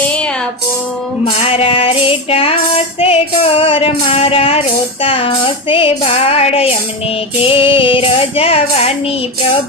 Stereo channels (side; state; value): both; normal; correlation 0.16